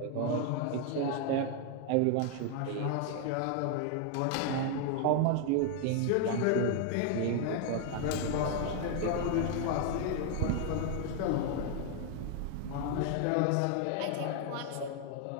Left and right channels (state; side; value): different; both; correlation 0.00